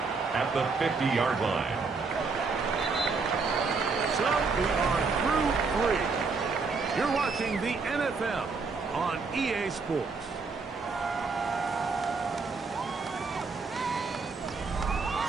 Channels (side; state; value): left; quieter; 4.5 dB